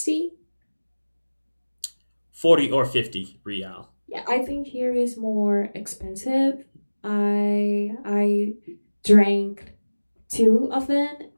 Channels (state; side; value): inverted; both; correlation -1.00